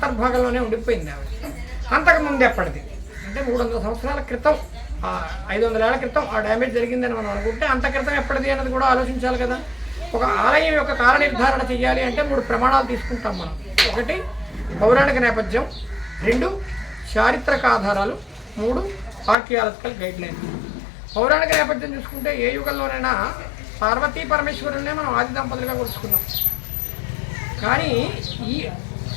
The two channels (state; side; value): drops out; right; at 19.4 s